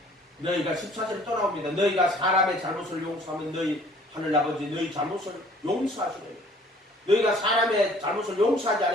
너희가 14절에 또 나옵니다. 너희가 사람의 잘못을 용서하면 너희 하늘아버지 너희 잘못을 용서하시래요. 너희가 사람의 잘못을 용서하지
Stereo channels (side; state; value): both; normal; correlation 0.54